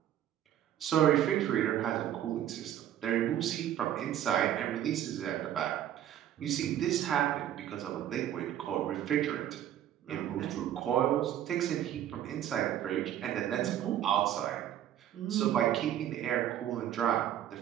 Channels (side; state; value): left; quieter; 11.3 dB